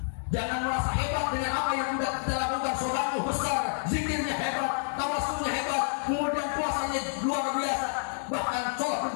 Jangan merasa hebat dengan apa yang sudah kita lakukan. Sodatmu besar, zikirnya hebat, tawasulnya hebat, kemudian puasanya luar biasa, bahkan sholat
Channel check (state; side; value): silent; right; digital silence